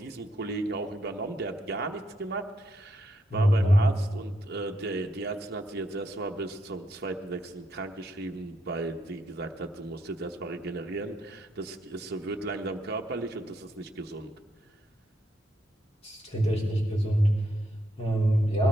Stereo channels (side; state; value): both; normal; correlation 0.77